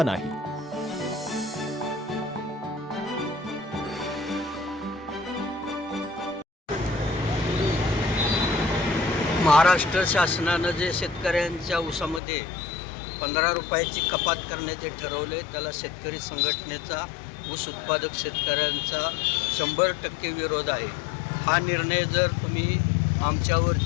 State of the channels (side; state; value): right; drops out; at 12.2 s